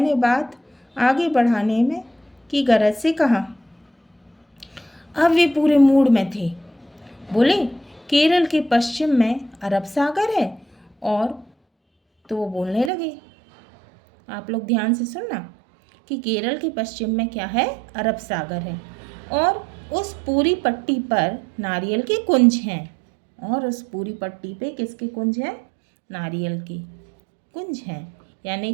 बात आगे बढ़ाने में की गरज से कहा। अब वे पूरे मूड में थे। बोले, केरल के पश्चिम में अरब सागर है। और तो वो बोलने लगे, आप लोग ध्यान से सुनना, कि केरल के पश्चिम में क्या है? अरब सागर है। और उस पूरी पट्टी पर नारियल के कुंज हैं। और उस पूरी पट्टी पे किसके कुंज हैं? नारियल के कुंज हैं, यानी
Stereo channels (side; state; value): left; drops out; at 12.9 s